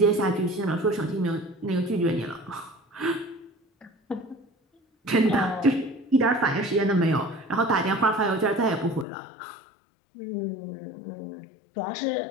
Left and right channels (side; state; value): right; drops out; at 9.1 s